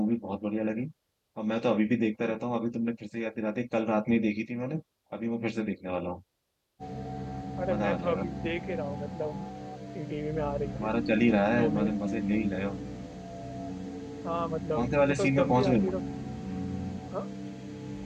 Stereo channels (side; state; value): both; identical; correlation 1.00